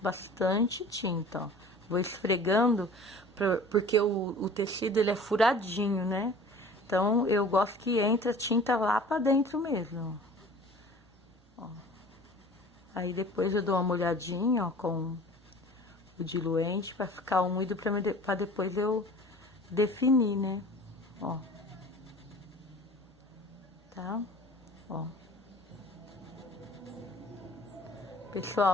tinta, ó. Vou esfregando, porque o tecido, ele é furadinho, né? Então, eu gosto que entre a tinta lá pra dentro mesmo, ó. Aí, depois eu dou uma molhadinha, ó, com o diluente pra ficar úmido, pra depois eu definir, né? Ó. Tá? Ó.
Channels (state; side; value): normal; both; correlation 0.44